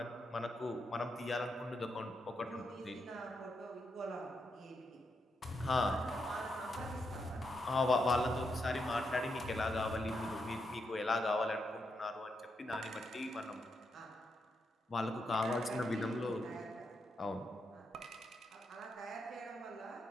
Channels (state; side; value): normal; both; correlation 0.82